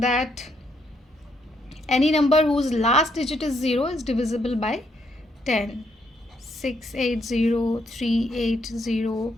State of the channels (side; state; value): both; normal; correlation 0.74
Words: any number whose last digit is 0 is divisible by 10. 680, 380,